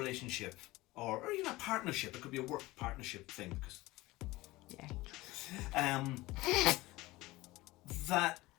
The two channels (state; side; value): quieter; right; 19.7 dB